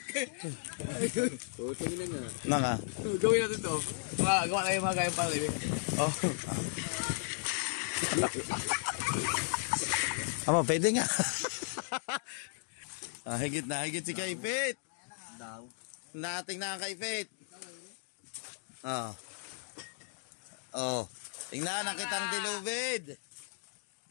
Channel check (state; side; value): silent; right; digital silence